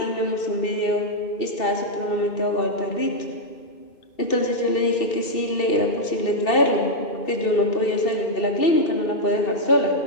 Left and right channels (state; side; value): late; right; 2.7 ms